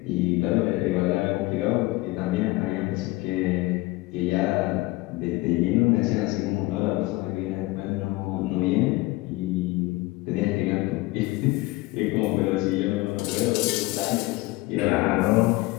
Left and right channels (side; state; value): right; quieter; 20.5 dB